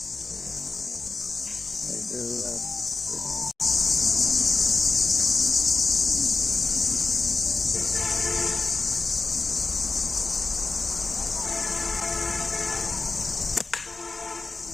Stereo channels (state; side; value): quieter; right; 3.8 dB